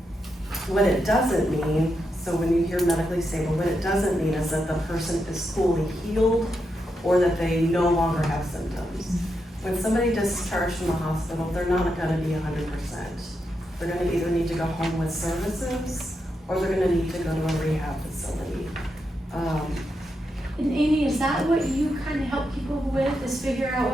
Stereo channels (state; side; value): normal; both; correlation 0.84